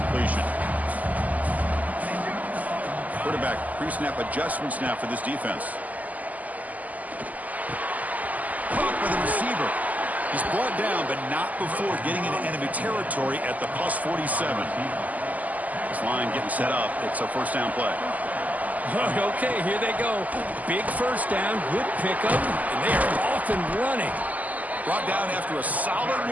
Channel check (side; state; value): left; late; 0.078 ms